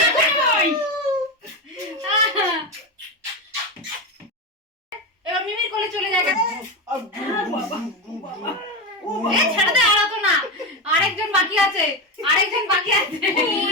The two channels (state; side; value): normal; both; correlation 0.16